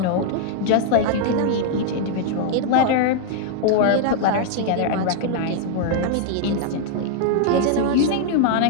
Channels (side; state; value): both; different; correlation -0.01